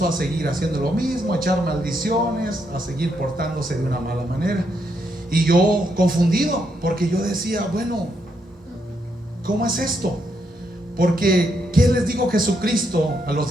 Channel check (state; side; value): normal; both; correlation 0.78